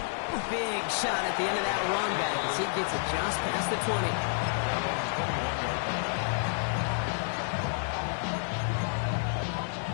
Big shot at the end of that run back as he gets it just past the 20.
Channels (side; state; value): right; silent; 58 dB below the other